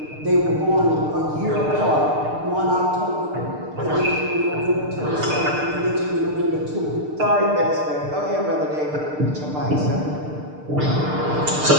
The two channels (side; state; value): left; late; 6.6 ms